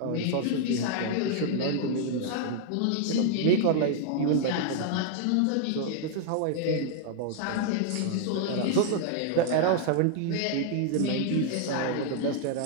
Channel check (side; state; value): both; different; correlation 0.00